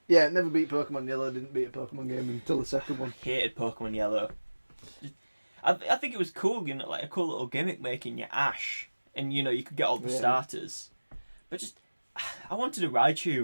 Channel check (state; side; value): inverted; both; correlation -1.00